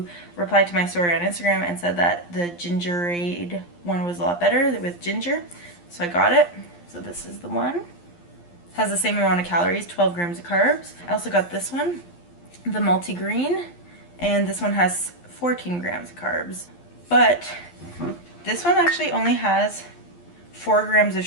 replied to my story on Instagram and said that the gingerade one was a lot better with ginger. So I got it. So this is the one. Has the same amount of calories, 12 grams of carbs. I also got this one, the multi-green, and this one has 14 grams of carbs. But this one actually only has 4 grams of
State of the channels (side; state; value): right; late; 11 ms